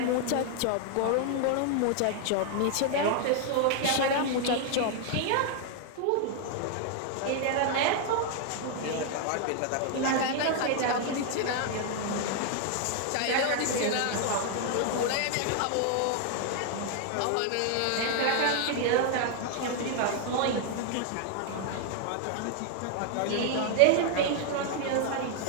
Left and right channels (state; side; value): different; both; correlation 0.00